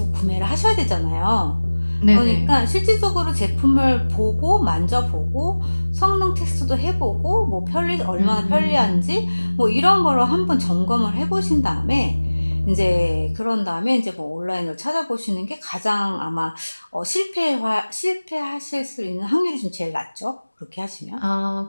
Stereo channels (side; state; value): both; inverted; correlation -1.00